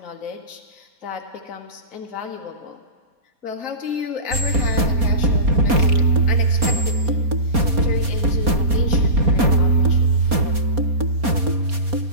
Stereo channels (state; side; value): late; left; 4.2 ms